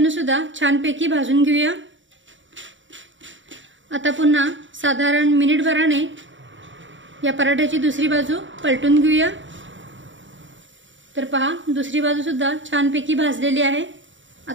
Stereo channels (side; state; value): left; late; 0.55 ms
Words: सुद्धा छानपैकी भाजून घेऊया। आता पुन्हा साधारण मिनिटभराने या पराठ्याची दुसरी बाजू पलटून घेऊया। तर पहा दुसरी बाजू सुद्धा छानपैकी भाजलेली आहे।